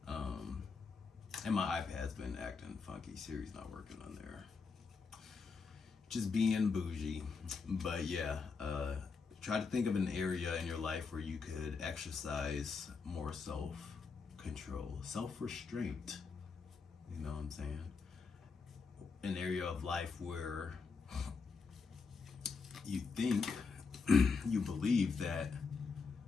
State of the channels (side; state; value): right; quieter; 4.9 dB